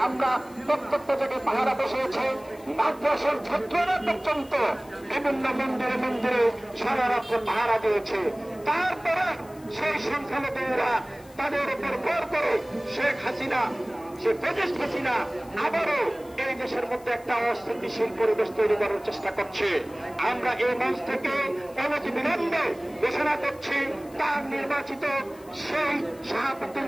আমরা প্রত্যেকটা জায়গায় পাহারা বসিয়েছে। মাদ্রাসার ছাত্ররা পর্যন্ত বিভিন্ন মন্দিরে মন্দিরে সারা রাত্রে পাহারা দিয়েছে। তারপরে সেই সংখ্যালঘুরা তাদের উপর ভর করে শেখ হাসিনা, সে ফ্যাসিস্ট হাসিনা আবারও এই দেশের মধ্যে একটা অস্থিতিশীল পরিবেশ তৈরি করার চেষ্টা করছে। আমরা এই মঞ্চ থেকে অনতিবিলম্বে ঘোষণা করছি তার নির্বাচিত সেই শাহাবুদ্দিন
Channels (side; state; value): left; noise; hiss, 25 dB below the sound